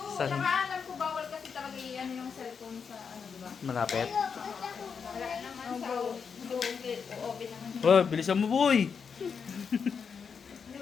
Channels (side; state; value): right; quieter; 6.2 dB